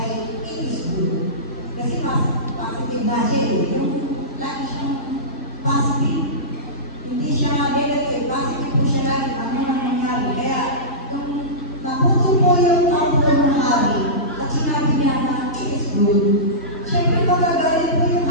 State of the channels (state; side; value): normal; both; correlation -0.19